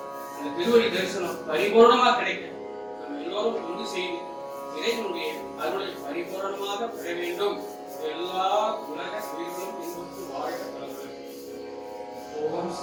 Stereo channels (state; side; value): identical; both; correlation 1.00